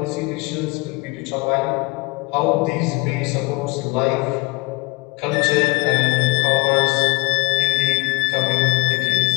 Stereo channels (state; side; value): quieter; right; 24.8 dB